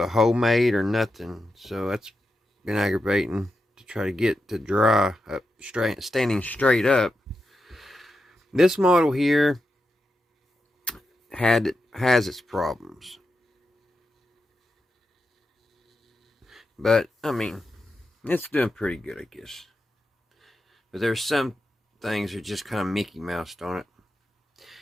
hole made or nothing, so that's been aggravating to try to get to dry up straight, standing straight up. This model here has its problems, but I mean, it's doing pretty good, I guess. But there's some things that are just kind of Mickey Moused on it.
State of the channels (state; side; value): normal; both; correlation 0.88